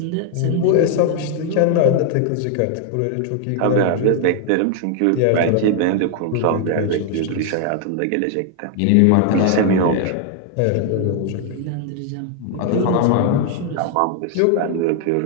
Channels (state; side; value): different; both; correlation 0.00